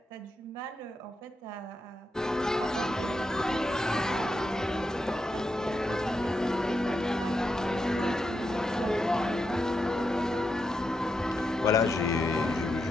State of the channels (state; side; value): normal; both; correlation 0.85